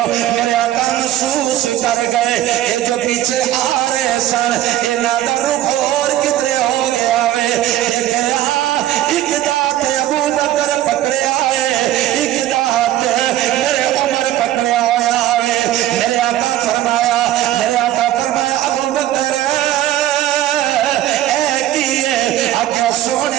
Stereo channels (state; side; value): quieter; left; 13.3 dB